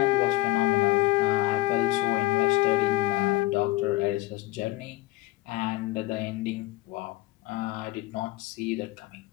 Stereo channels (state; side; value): quieter; right; 19.3 dB